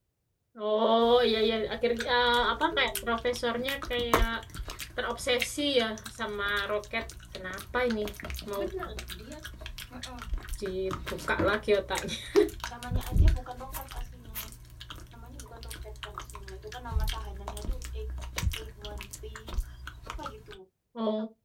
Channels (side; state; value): both; identical; correlation 1.00